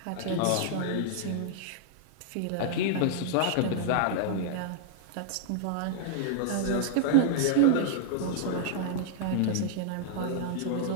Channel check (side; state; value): both; different; correlation -0.01